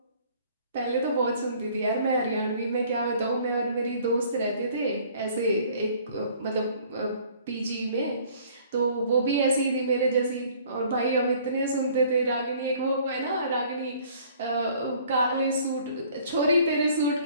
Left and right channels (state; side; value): inverted; both; correlation -0.56